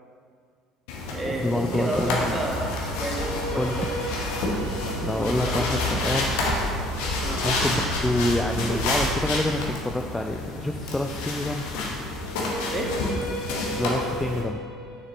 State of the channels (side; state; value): both; normal; correlation 0.61